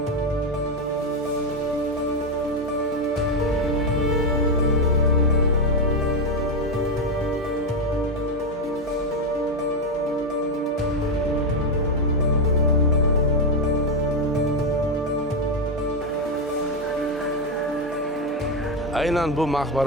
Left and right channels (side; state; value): both; normal; correlation 0.06